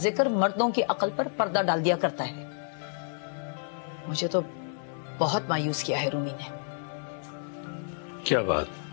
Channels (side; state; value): right; silent; 58 dB below the other